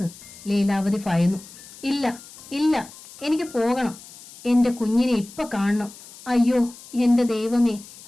ലീലാവതി ഭയന്നു. ഇല്ല, ഇല്ല, എനിക്ക് പോകണം. എന്റെ കുഞ്ഞിനെ ഇപ്പൊ കാണണം. അയ്യോ എന്റെ ദൈവമേ,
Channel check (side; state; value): left; noise; hiss, 19 dB below the sound